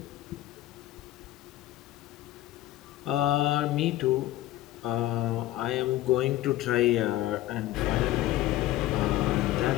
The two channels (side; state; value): right; quieter; 15.2 dB